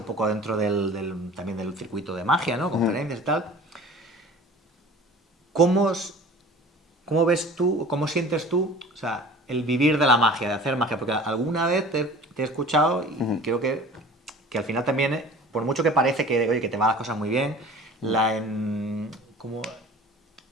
poco dentro también del circuito de magia, ¿no? Conferencias y tal. ¿Cómo, ¿Cómo ves tú, cómo sientes tú, o sea, el vivir de la magia, de hacer magia? Porque alguna vez te he escuchado y creo que al final también, por mucho que parece que, oye, que te van las cosas muy bien, como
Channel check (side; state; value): both; normal; correlation 0.43